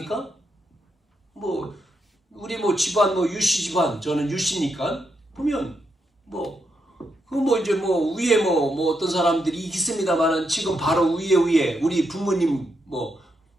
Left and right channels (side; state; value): both; normal; correlation 0.82